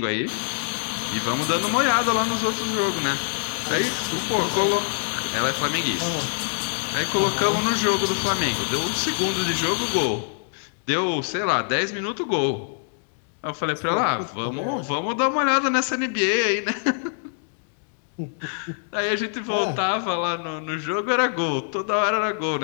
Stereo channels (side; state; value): right; silent; digital silence